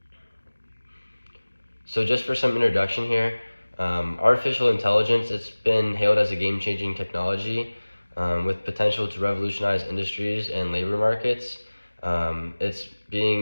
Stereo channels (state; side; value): inverted; both; correlation -1.00